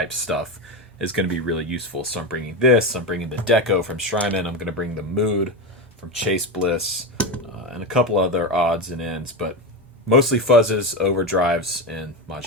stuff is going to be really useful. So I'm bringing this, I'm bringing the Deco from Strymon, I'm going to bring the Mood from Chase Bliss, and a couple other odds and ends, but mostly fuzzes, overdrives, and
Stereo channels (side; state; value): both; normal; correlation 0.15